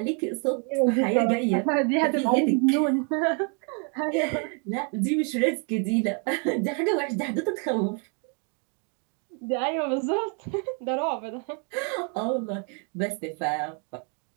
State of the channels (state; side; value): quieter; left; 38.6 dB